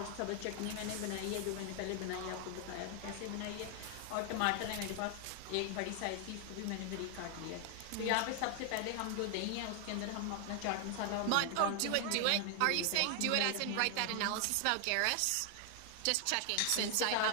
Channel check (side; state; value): both; different; correlation 0.00